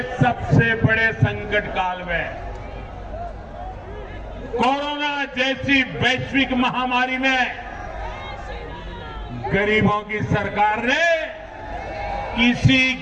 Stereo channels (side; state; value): both; identical; correlation 1.00